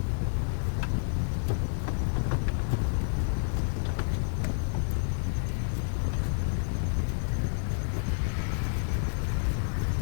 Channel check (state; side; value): silent; right; digital silence